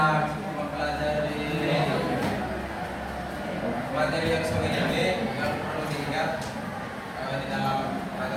mempelajari materi yang sore ini yang perlu diingat di dalam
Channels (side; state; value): both; identical; correlation 1.00